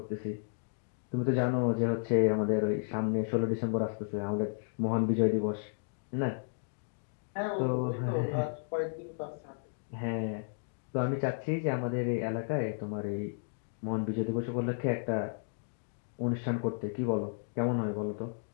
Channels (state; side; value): silent; right; digital silence